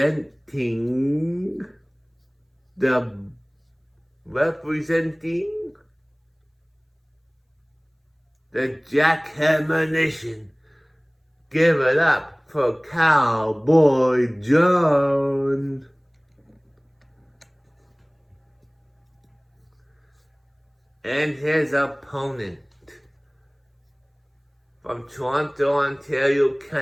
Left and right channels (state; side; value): identical; both; correlation 1.00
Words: the Jackhammer Nation. Give it up for Cowboy John. And his opponent, from Toronto, Ontario,